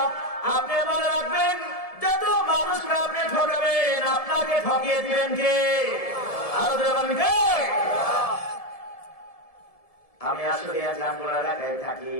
আপনি মনে রাখবেন, যত মানুষকে আপনি ঠকাবেন আপনাকে ঠকিয়ে দিবেন কে? আরো বলেন কে? আমি আসলে জামগড়া এলাকায় থাকি,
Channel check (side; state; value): right; late; 1.7 ms